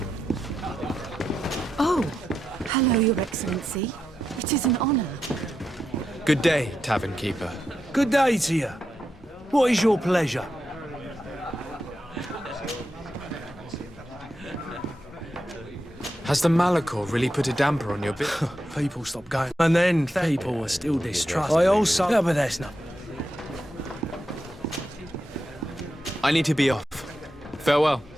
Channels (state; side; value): normal; both; correlation 0.86